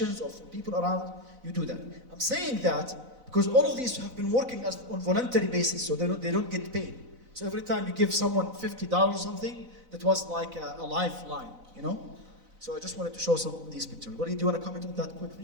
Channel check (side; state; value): left; late; 4.0 ms